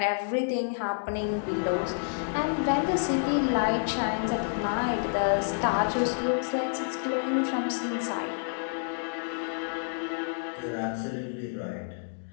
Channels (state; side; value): silent; right; digital silence